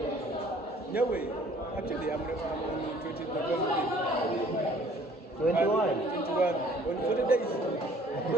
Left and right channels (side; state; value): both; normal; correlation 0.56